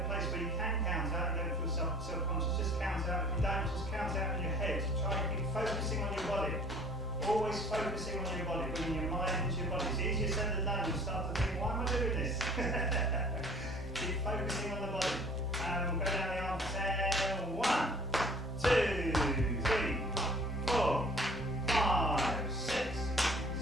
place where you can count out, you don't feel self-conscious, just count out. If you don't, just count out in your head. Try and keep focusing on your body. Always focusing on your body, bringing your mind into your body. It's easier said than done. You start to think, why am I doing this? Keep focusing on the body. And we'll go down the arm for 10. 1, 2, 3, 4, 5, 6,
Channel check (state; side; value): normal; both; correlation 0.51